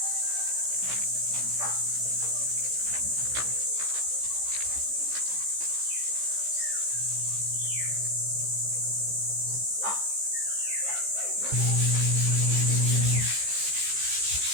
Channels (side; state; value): left; late; 15 ms